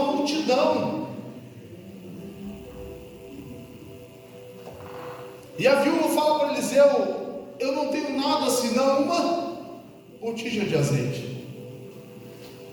multidão. E a viúva fala para Eliseu, eu não tenho nada senão uma botija de azeite.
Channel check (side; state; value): both; identical; correlation 1.00